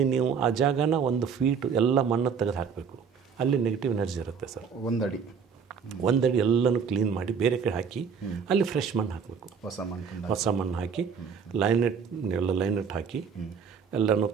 ನೀವು ಆ ಜಾಗನ 1 ಫೀಟ್ ಎಲ್ಲ ಮಣ್ಣು ತೆಗೆದು ಹಾಕಬೇಕು. ಅಲ್ಲಿ ನೆಗೆಟಿವ್ ಎನರ್ಜಿ ಇರುತ್ತೆ ಸರ್. 1 ಅಡಿ ಎಲ್ಲನೂ ಕ್ಲೀನ್ ಮಾಡಿ ಬೇರೆ ಕಡೆ ಹಾಕಿ ಅಲ್ಲಿ ಫ್ರೆಶ್ ಮಣ್ಣು ಹಾಕಬೇಕು. ಹೊಸ ಮಣ್ಣು ಹಾಕಿ ಲೈನೆಟ್ ಹಾಕಿ ಎಲ್ಲನೂ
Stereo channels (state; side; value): quieter; left; 6.4 dB